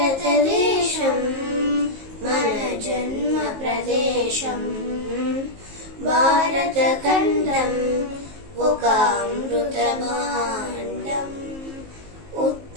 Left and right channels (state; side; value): late; left; 19 ms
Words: మన జన్మ ప్రదేశం భారతఖండం ఒక అమృత భాండం